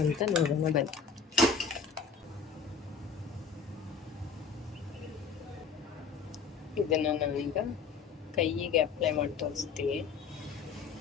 ಅಂತ ನೋಡೋಣ ಬನ್ನಿ. ಇದನ್ನು ನಾನೀಗ ಕೈಯಿಗೆ ಅಪ್ಲೈ ಮಾಡಿ ತೋರಿಸ್ತೀನಿ.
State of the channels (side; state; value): right; quieter; 5.5 dB